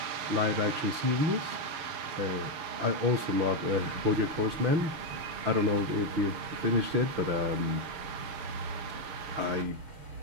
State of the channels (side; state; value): left; late; 6.7 ms